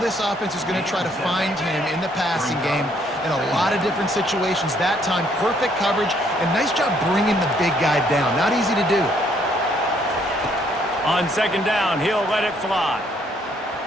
offense is going to try to find him in the passing game in a lot of different situations. That time, perfect coverage, and nice job bringing the big guy down. Not easy to do. On second down, he'll let it fly.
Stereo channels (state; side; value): normal; both; correlation 0.67